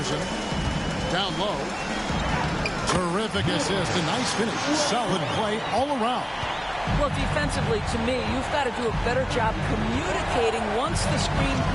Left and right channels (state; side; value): identical; both; correlation 1.00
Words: Down low. Terrific assist. A nice finish. Solid play all around. Well, defensively, to me, you've got to do a better job communicating once the screen